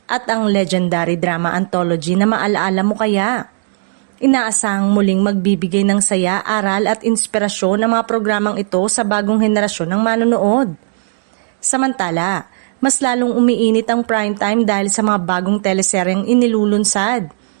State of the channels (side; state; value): left; silent; digital silence